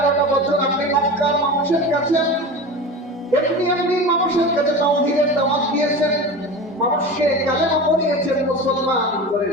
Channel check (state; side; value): normal; both; correlation 0.30